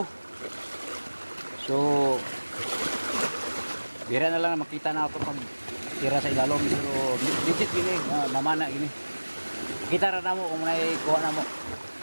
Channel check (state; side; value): inverted; both; correlation -1.00